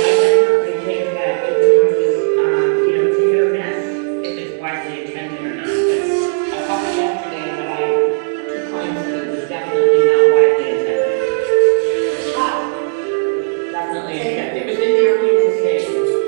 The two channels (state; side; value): silent; left; digital silence